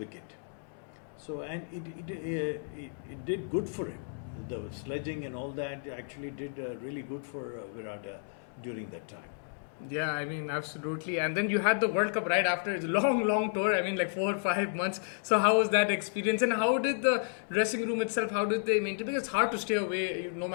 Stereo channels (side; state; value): right; silent; digital silence